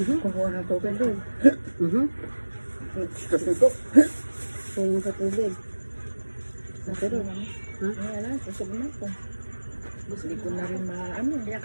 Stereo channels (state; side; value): inverted; both; correlation -1.00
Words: Kukuha ng tubig doon. Kasi ko. Kung sa tubig. Pero, ha? Wala, susog na ako. Hindi ko na rin maano. Kaya